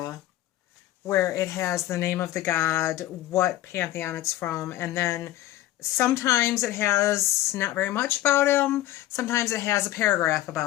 where it has the name of the god, what pantheon it's from, and then sometimes it has not very much about him. Sometimes it has a paragraph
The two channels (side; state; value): right; quieter; 14.6 dB